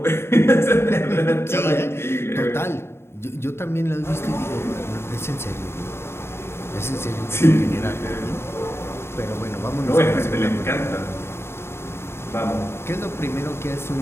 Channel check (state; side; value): late; right; 0.12 ms